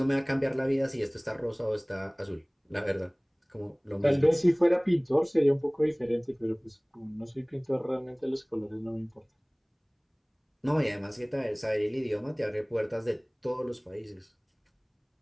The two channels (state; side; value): identical; both; correlation 1.00